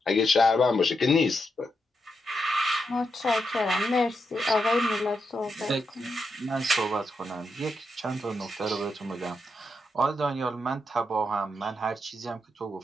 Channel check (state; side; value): normal; both; correlation 0.83